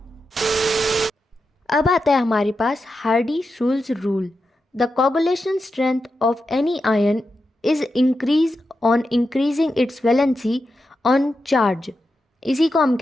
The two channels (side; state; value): both; normal; correlation 0.88